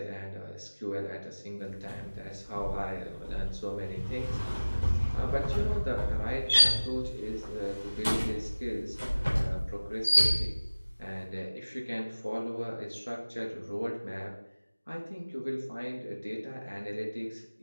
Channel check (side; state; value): both; inverted; correlation -1.00